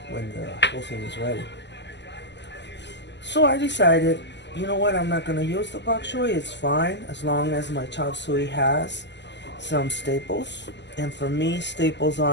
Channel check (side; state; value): right; late; 0.51 ms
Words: when the whole thing is ready. So I decided, you know what, I'm not going to use the bok choy. It's fine as long as my chop suey has some staples. And for me, staples